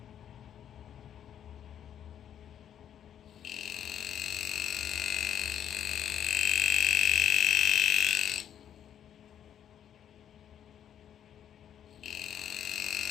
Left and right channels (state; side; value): quieter; right; 9.7 dB